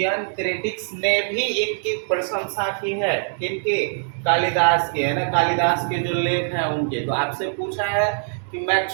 क्रिटिक्स ने भी इनकी प्रशंसा की है, किनकी, कालिदास की, है ना। कालिदास के जो लेख हैं उनके। तो आपसे पूछा है कि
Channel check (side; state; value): left; silent; digital silence